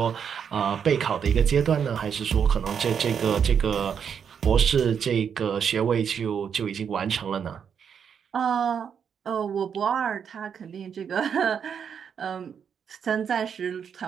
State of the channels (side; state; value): left; quieter; 7.4 dB